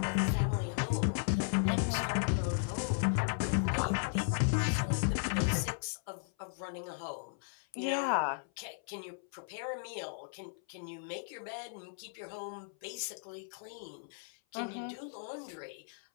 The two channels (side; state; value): right; silent; 54 dB below the other